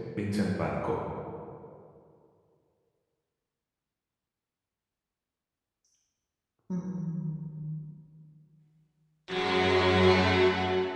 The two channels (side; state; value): both; identical; correlation 1.00